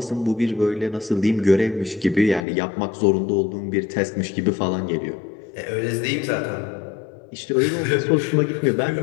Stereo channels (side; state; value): right; drops out; at 2.5 s